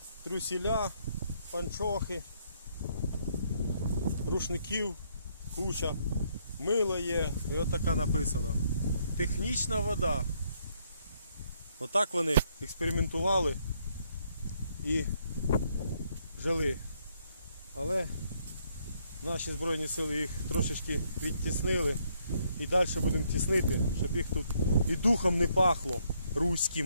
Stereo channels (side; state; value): both; inverted; correlation -0.71